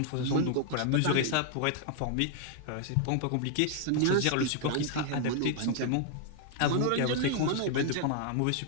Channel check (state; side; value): different; both; correlation 0.00